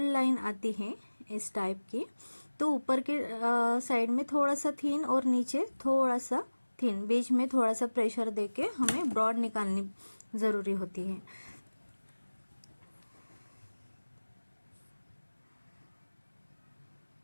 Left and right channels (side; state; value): both; inverted; correlation -1.00